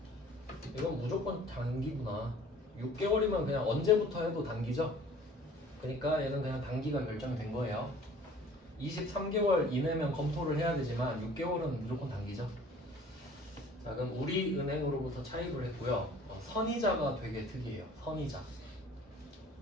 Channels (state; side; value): normal; both; correlation 0.50